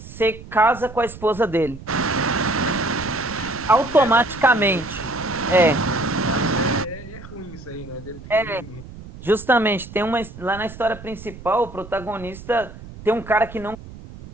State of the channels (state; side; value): noise; right; rumble, 15 dB below the sound